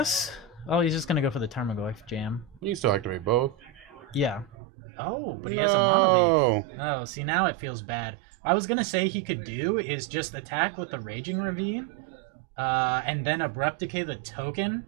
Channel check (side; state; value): left; drops out; at 4.5 s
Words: Oh, he's just gonna go for the Tarmogoyf jam. You can still activate both. Yeah. Oh, but he has a Mana Leak. Oh, see, now it feels bad. I was gonna say he could do is just attack with the Raging Ravine, and then Abrupt Decay the token